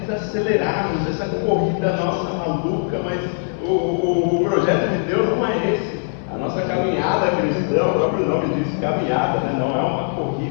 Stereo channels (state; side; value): silent; right; digital silence